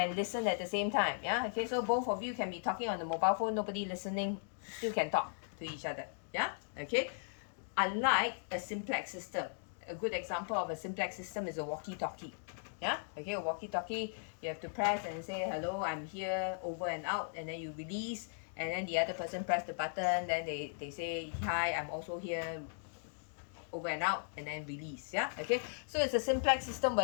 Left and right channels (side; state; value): right; silent; digital silence